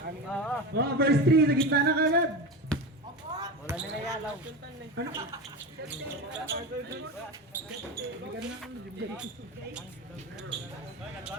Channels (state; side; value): normal; both; correlation 0.24